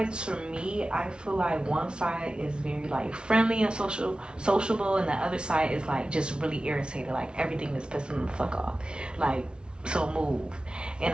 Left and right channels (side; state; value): left; late; 0.056 ms